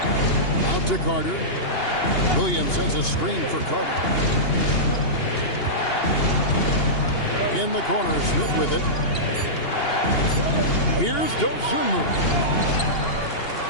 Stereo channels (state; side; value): late; right; 2.8 ms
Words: Out to Carter. Williams sends a screen for Carter. In the corner, Smith with it. Here's Dosunmu.